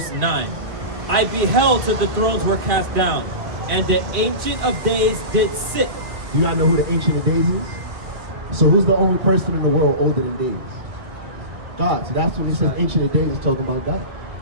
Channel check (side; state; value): left; late; 1.7 ms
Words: 9. I beheld till the thrones were cast down, and the Ancient of Days did sit. You gotta know who the Ancient of Days is? So who's the only person in the world older than days? God. So that's when he says Ancient of Days is talking about God.